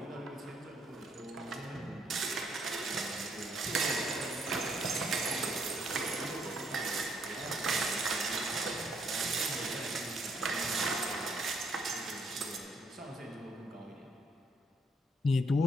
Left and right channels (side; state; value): both; normal; correlation 0.70